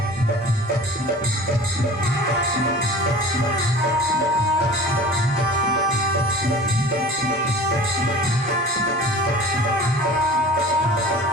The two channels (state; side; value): normal; both; correlation 0.41